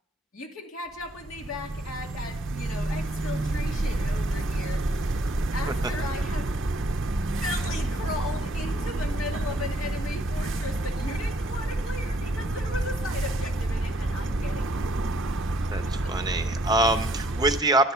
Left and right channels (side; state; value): both; normal; correlation 0.65